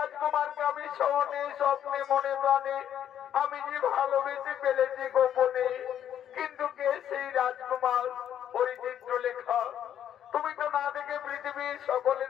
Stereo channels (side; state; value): right; quieter; 10.1 dB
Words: আমি স্বপ্নে স্বপ্নে মনে প্রাণে আমি যে ভালোবেসে ফেলেছি গোপনে। কিন্তু কে সেই রাজকুমার? ওই চিত্রলেখা। তুমি তো না দেখে পৃথিবীর